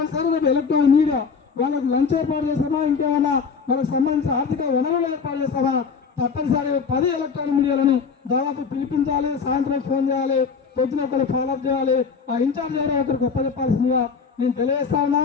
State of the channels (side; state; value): right; quieter; 5.6 dB